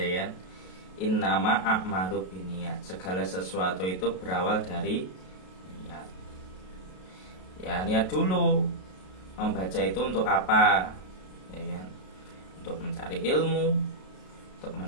kan? Innama a'malu binniyat. Segala sesuatu itu berawal dari niat. Ya, niat dulu. Membaca itu untuk apa? Ya kan? Untuk mencari ilmu, untuk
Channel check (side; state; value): right; late; 32 ms